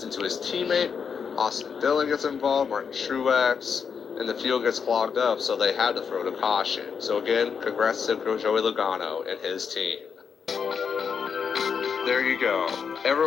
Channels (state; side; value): quieter; right; 6.4 dB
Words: into his teammate. Austin Dillon gets involved. Martin Truex. And the field gets clogged up, so they had to throw the caution. So again, congrats to Joey Logano and his team. There you go.